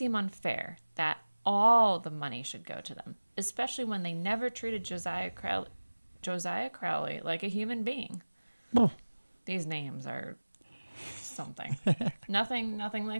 unfair that all the money should go to them, especially when they never treated Josiah Crowley like a human being. Oh. These names are something. nothing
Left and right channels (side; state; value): both; inverted; correlation -1.00